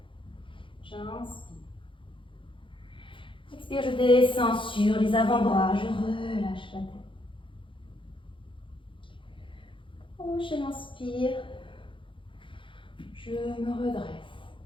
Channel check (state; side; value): late; right; 0.25 ms